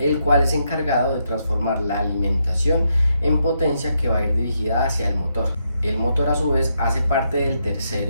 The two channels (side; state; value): both; inverted; correlation -0.79